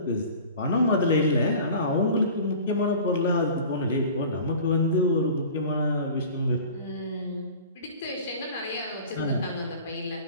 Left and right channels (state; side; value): inverted; both; correlation -0.41